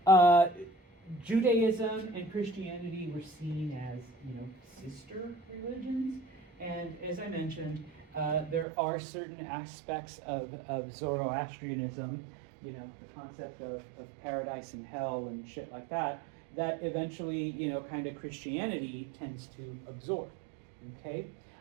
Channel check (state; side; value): drops out; left; at 8.7 s